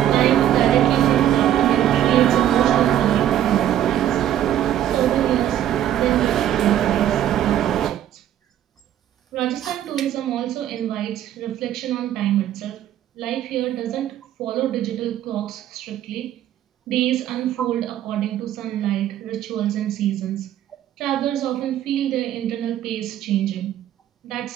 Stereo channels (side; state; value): left; quieter; 11.5 dB